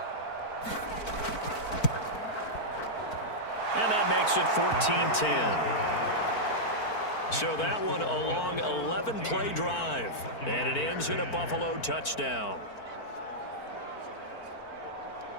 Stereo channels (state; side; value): late; right; 4.5 ms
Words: And that makes it 14-10. So that one a long 11-play drive. And it ends in a Buffalo touchdown.